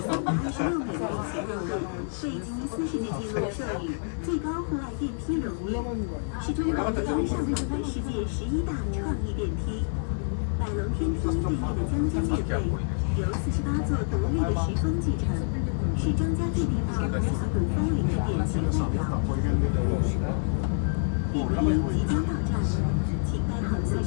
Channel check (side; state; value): right; silent; digital silence